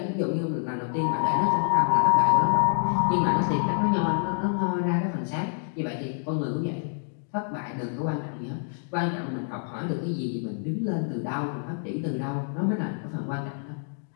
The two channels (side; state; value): right; silent; 60 dB below the other